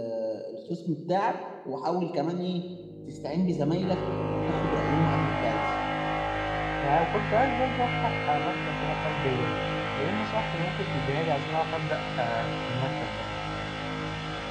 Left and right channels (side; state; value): both; identical; correlation 1.00